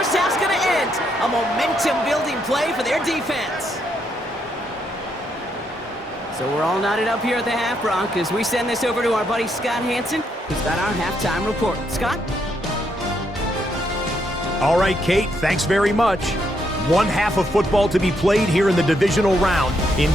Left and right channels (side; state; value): both; normal; correlation 0.76